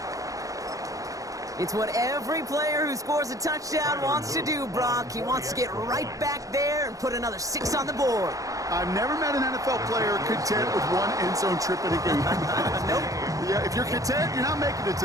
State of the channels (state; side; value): late; left; 0.16 ms